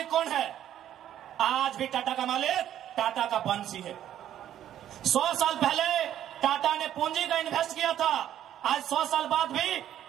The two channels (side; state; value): left; quieter; 11.3 dB